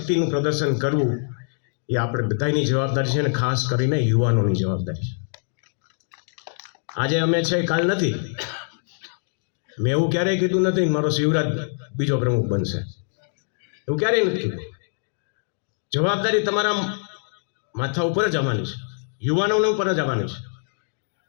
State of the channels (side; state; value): right; silent; digital silence